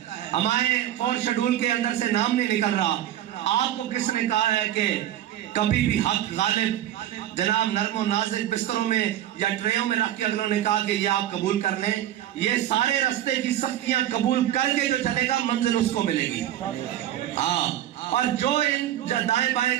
ہمارے 4 شیڈول کے اندر سے نام نہیں نکل رہا۔ آپ کو کس نے کہا ہے کہ کبھی بھی حق غالب جناب نرم و نازک بستروں میں یا ٹریوں میں رکھ کے اگلوں نے کہا کہ یہ آپ قبول کر لیں؟ یہ سارے رستے کی سختیاں قبول کر کے جو چلے گا منزل اس کو ملے گی۔ اور جو ان دائیں بائیں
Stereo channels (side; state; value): left; quieter; 12.3 dB